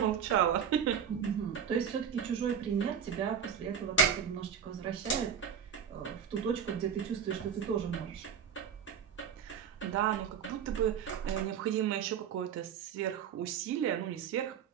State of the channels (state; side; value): quieter; left; 7.8 dB